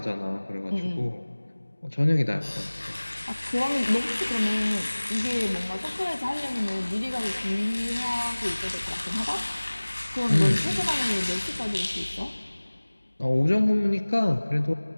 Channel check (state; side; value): inverted; both; correlation -1.00